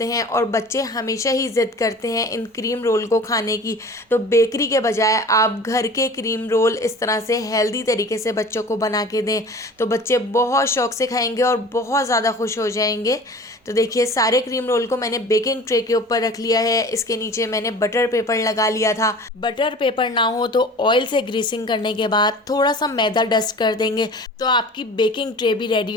हैं और बच्चे हमेशा ही ज़िद करते हैं इन क्रीम रोल को खाने की। तो बेकरी के बजाय आप घर के क्रीम रोल इस तरह से हेल्दी तरीके से बच्चों को बना के दें तो बच्चे बहुत शौक़ से खाएंगे और बहुत ज़्यादा खुश हो जाएंगे। तो देखिए सारे क्रीम रोल को मैंने बेकिंग ट्रे के ऊपर रख लिया है। इसके नीचे मैंने बटर पेपर लगा लिया था। बटर पेपर ना हो तो ऑयल से ग्रीसिंग करने के बाद थोड़ा सा मैदा डस्ट कर देंगे तो आपकी बेकिंग ट्रे भी रेडी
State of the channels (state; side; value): normal; both; correlation 0.41